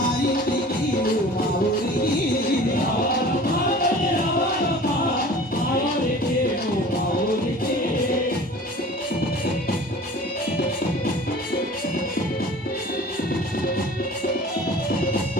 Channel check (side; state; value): both; normal; correlation 0.43